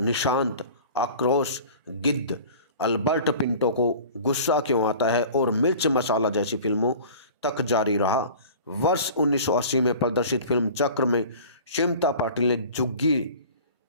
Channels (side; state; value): both; inverted; correlation -0.42